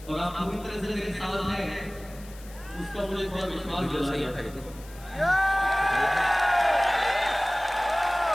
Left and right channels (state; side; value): noise; left; hiss, 21 dB below the sound